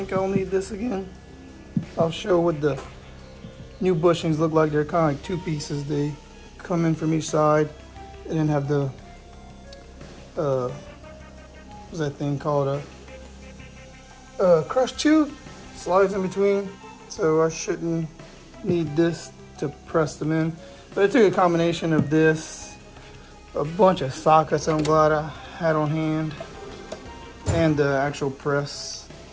I'll need this again. I'll show what the new bushings look like. They're kind of like two pieces. They come in from each side and then have the, what's that thing called? A crush tube slides in between. So I shouldn't need this to press them in. But I took a combination of this, a bunch of sockets I'm glad I had on hand, and the actual press.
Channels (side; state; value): both; identical; correlation 1.00